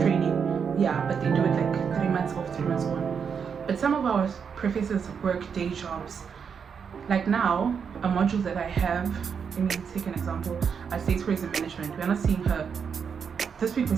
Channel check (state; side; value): quieter; left; 6.7 dB